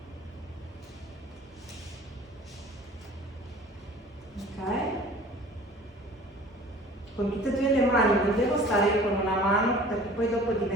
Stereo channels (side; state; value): both; normal; correlation 0.47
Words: Con tutte e due le mani non devo stare con una mano perché poi dopo